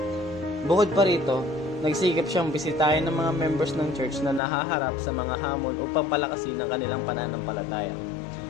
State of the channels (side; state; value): right; drops out; at 4.4 s